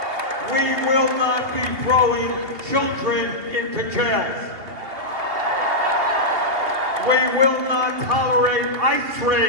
We will not be throwing children into jails. We will not tolerate ICE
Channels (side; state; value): left; late; 2.8 ms